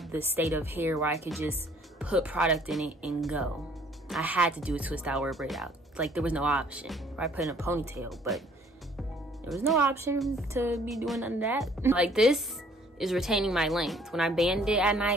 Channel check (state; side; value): normal; both; correlation 0.59